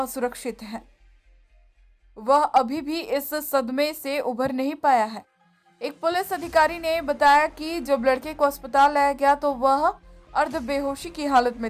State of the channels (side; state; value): both; identical; correlation 1.00